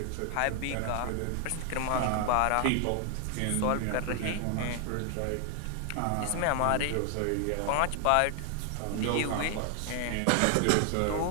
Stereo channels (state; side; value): different; both; correlation 0.00